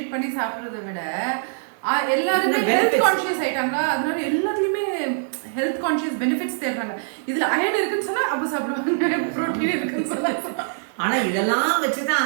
பண்ணி சாப்பிடுறத விட எல்லாருமே ஹெல்த் கான்ஷியஸ் ஆயிட்டாங்க. அதனால எல்லாத்துலயுமே ஹெல்த் கான்ஷியஸ் பெனிஃபிட்ஸ் தேடுறாங்க. இதுல அயன் இருக்குன்னு சொன்னா அப்ப சாப்பிடுவாங்க, புரோட்டீன் இருக்குன்னு சொன்னா. ஆனா இதெல்லாம் வச்சுதான்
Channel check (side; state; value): left; silent; digital silence